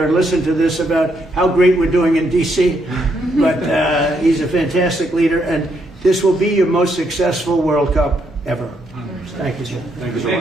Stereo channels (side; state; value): both; normal; correlation 0.76